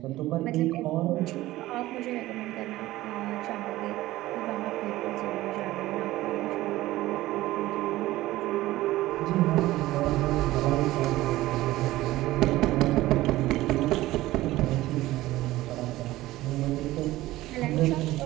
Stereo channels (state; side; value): quieter; left; 16.9 dB